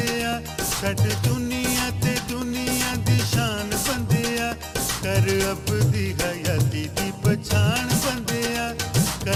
छड़ दुनिया ते दुनिया दी शान बंदिया कर अब दी हयाती दी पछाण बंदिया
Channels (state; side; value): identical; both; correlation 1.00